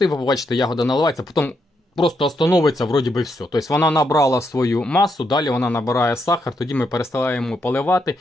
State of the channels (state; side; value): normal; both; correlation 0.79